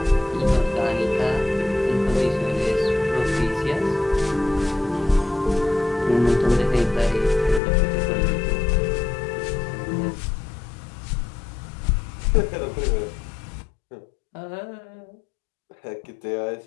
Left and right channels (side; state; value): right; drops out; at 7.6 s